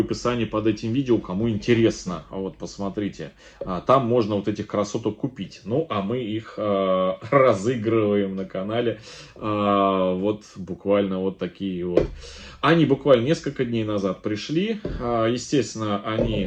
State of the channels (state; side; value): identical; both; correlation 1.00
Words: под этим видео, кому интересно, вот посмотрите, там можно вот этих красоток купить, ну, а мы их разыгрываем на канале, вот буквально вот такие вот. Они буквально несколько дней назад пришли, естественно,